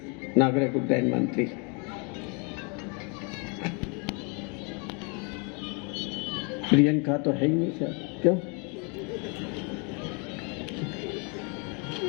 नागरिक उड्डयन मंत्री। प्रियंका तो है ही नहीं सर, क्यों?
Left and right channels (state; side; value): quieter; right; 34.3 dB